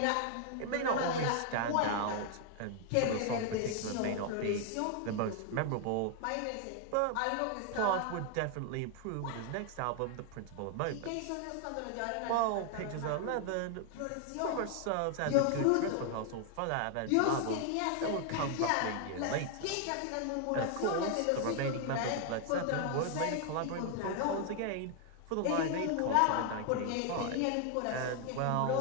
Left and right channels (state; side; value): different; both; correlation 0.00